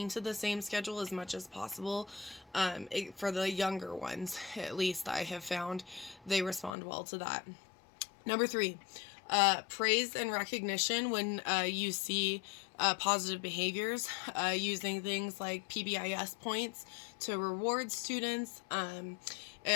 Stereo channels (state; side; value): drops out; right; at 6.8 s